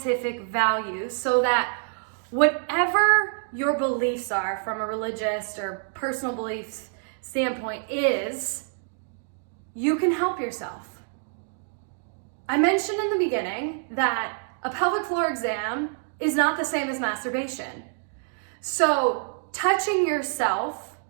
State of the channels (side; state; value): left; silent; 60 dB below the other